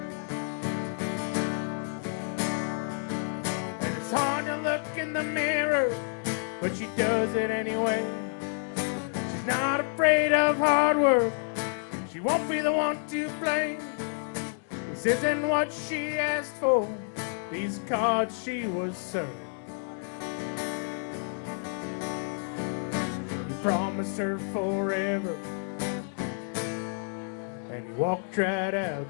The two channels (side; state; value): right; silent; 58 dB below the other